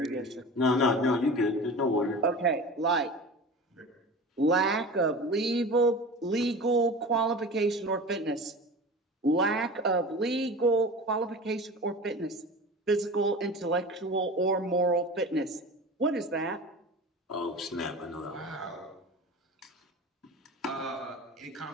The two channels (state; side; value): normal; both; correlation 0.35